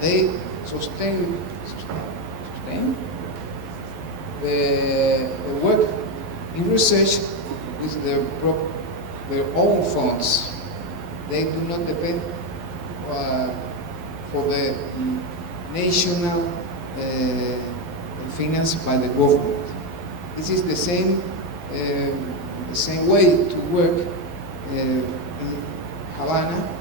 sustain the work in research with their own funds. They do not depend for the national finance by the government. This is the same way to work in Havana,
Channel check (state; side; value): late; left; 11 ms